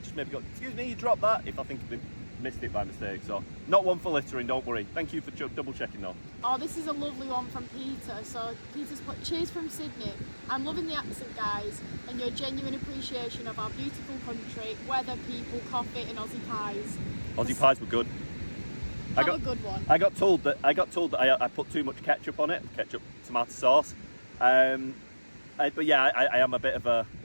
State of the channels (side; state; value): both; inverted; correlation -1.00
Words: just maybe go, excuse me, you dropped that, if I think they missed it by mistake. So not one for littering, don't worry. Thank you for double checking though. Oh, this is a lovely one from Peter. So Peter's put, cheers from Sydney. I'm loving the accent, guys, and your genuine appreciation of our beautiful country, weather, people, coffee and Aussie pies. Aussie pies were good. A good one. I got told that I put too much ketchup on it, tomato sauce. But yeah, I am a bit of